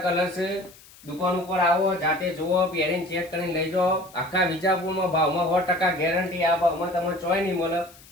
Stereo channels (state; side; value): noise; left; hiss, 23 dB below the sound